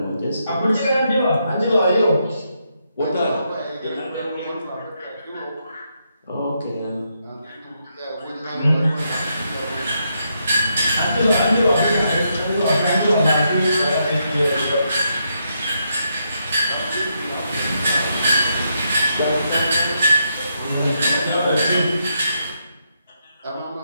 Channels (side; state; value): both; inverted; correlation -0.80